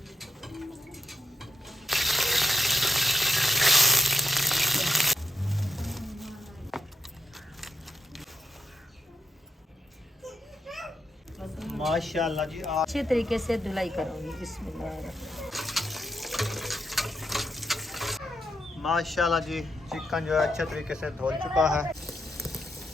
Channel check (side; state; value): both; normal; correlation 0.79